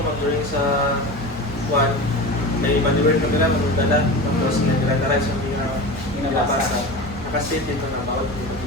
during sa one, may manual na nila, magdala, tapos nagdala sa mga nilabasa. Nakastate dito na bawat mga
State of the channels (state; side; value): normal; both; correlation 0.29